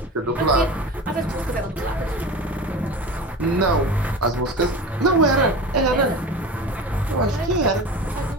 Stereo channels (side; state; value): both; normal; correlation 0.32